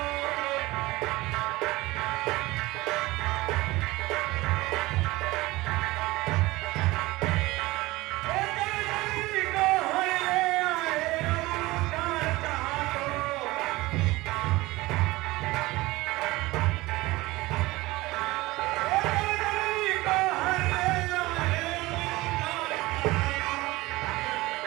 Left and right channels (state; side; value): quieter; left; 20.1 dB